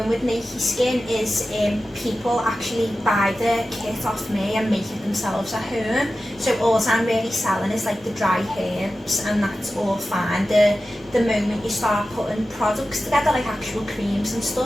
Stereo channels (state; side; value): normal; both; correlation 0.94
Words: with Nakey Skin is people actually buy the kit off me and make it themselves at home. So all I'm really selling is like the dry herbs, and that's all fine. The moment you start putting products together, like actual creams and